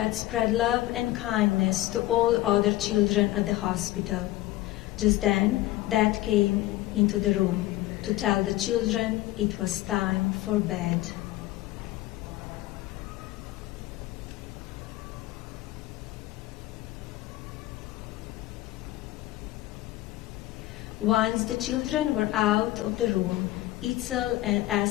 spread love and kindness to all other children at the hospital. Just then, Dad came into the room to tell the children it was time for bed. Once the children were out of the room, Itzel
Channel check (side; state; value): right; quieter; 16.6 dB